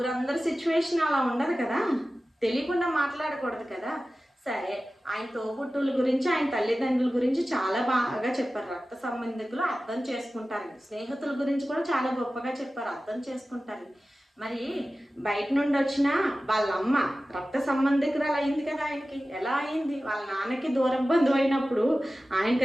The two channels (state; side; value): normal; both; correlation 0.95